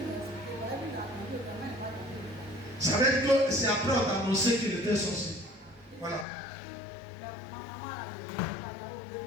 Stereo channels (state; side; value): drops out; right; at 6.2 s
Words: Ça veut dire que c'est après on t'a annoncé qu'il était sorcier. Voilà.